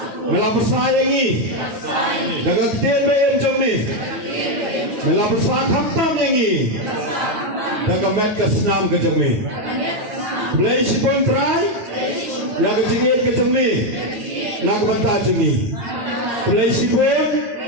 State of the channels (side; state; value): left; late; 9.1 ms